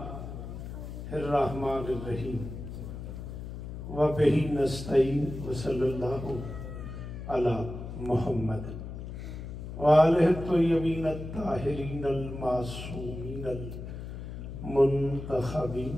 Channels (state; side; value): noise; left; hum, 9 dB below the sound